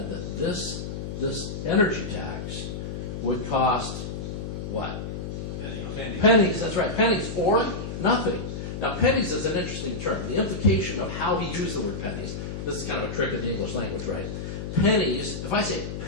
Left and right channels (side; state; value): left; noise; hum, 6 dB below the sound